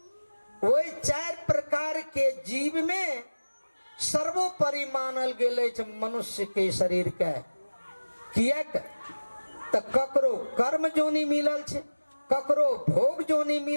वही 4 प्रकार के जीव में सर्वोपरि मानल गेले मनुष्य के शरीर के। कियक तो ककरो कर्म जोनी मिलल छे, ककरो भोग जोनी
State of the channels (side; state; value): both; inverted; correlation -1.00